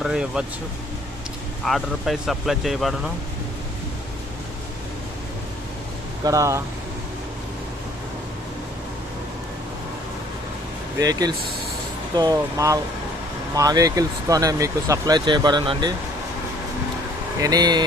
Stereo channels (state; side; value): normal; both; correlation 0.58